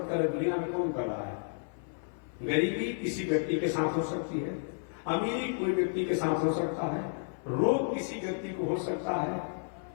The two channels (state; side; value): silent; right; 56 dB below the other